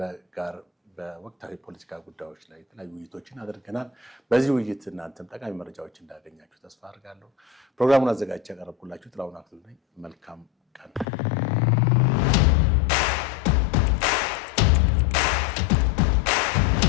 ጋር በወቅታዊ ፖለቲካ ጉዳዮች ላይ የተለያዩ ውይይቶችን አድርገናል። በዚህ ውይይት እናንተም ጠቃሚ መረጃዎች እንዳገኛችሁ ተስፋ አድርጋለሁ። ፕሮግራሙን አዘጋጅቼ ያቀረብኩላችሁ ጥላሁን አክሊሉ ነኝ። መልካም ቀን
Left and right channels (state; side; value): drops out; right; at 11.1 s